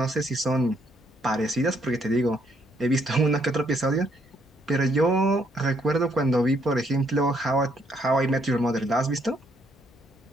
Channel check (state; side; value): normal; both; correlation 0.71